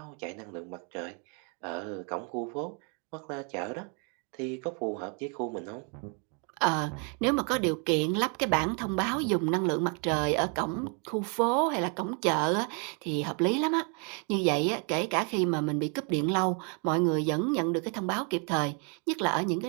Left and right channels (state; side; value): quieter; left; 37.5 dB